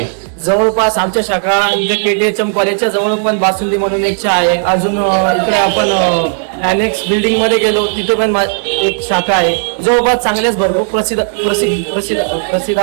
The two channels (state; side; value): silent; left; 72 dB below the other